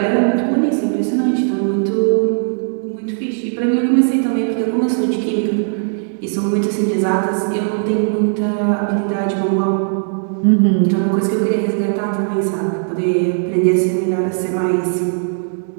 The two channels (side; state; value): left; silent; 65 dB below the other